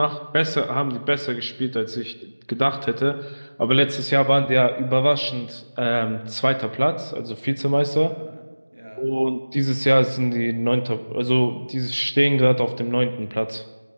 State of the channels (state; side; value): inverted; both; correlation -1.00